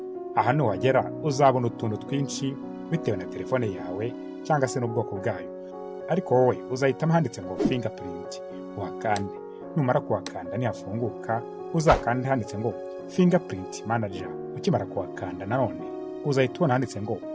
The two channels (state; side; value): identical; both; correlation 1.00